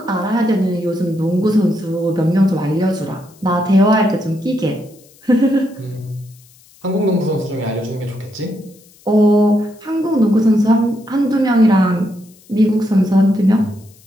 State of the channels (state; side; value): noise; left; hiss, 28 dB below the sound